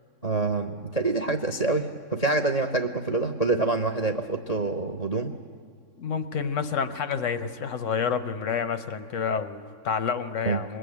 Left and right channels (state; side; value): late; right; 3.6 ms